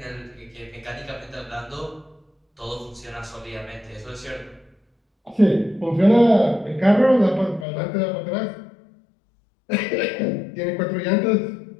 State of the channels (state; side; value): drops out; right; at 7.7 s